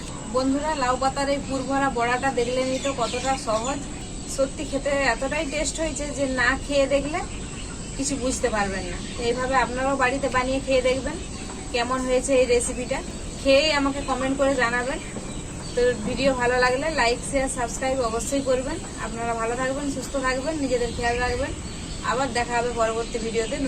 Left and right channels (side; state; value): both; identical; correlation 1.00